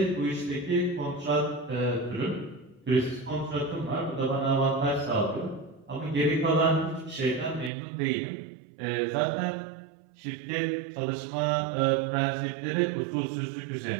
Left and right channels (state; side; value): drops out; left; at 7.7 s